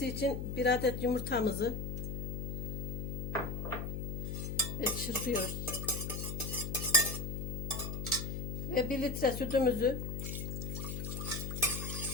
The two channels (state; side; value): noise; left; hum, 3 dB below the sound